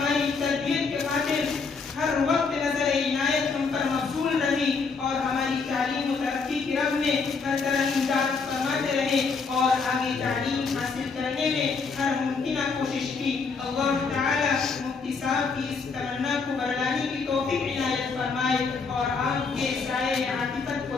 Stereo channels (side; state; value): right; quieter; 4.8 dB